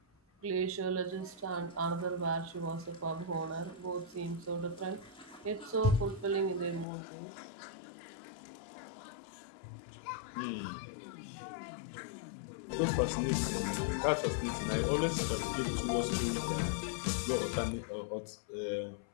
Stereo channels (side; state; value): right; drops out; at 6.9 s